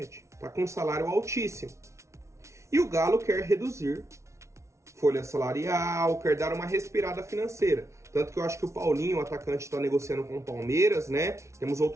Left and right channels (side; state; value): left; late; 0.14 ms